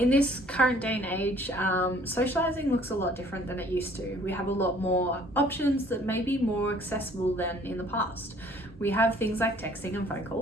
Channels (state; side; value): normal; both; correlation 0.56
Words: this current day and age, socializing looks a lot different than it used to. We have a lot more options that may be more accessible than in the past. We have things like texting and phone